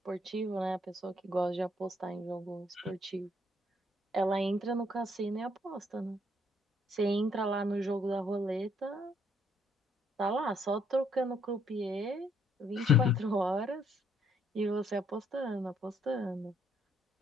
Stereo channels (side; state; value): both; normal; correlation 0.68